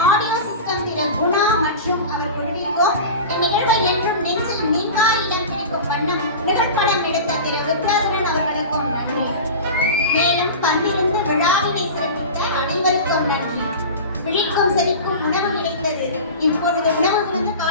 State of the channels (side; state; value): both; inverted; correlation -0.31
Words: ஆடியோ சிஸ்டம் திரு குணா மற்றும் அவர் குழுவிற்கும் இந்நிகழ்வை என்றும் நெஞ்சில் நீங்கா இடம் பிடிக்கும் வண்ணம் நிகழ்படம் எடுத்த திரு வித்யாதரன் அவர்களுக்கும் நன்றி. மேலும் பங்கிருந்து விழாவினை சிறப்பித்த அனைவருக்கும் நன்றி. விழிக்கும் செவிக்கும் உணவு கிடைத்தது. இப்பொழுது உணவு கொடுத்து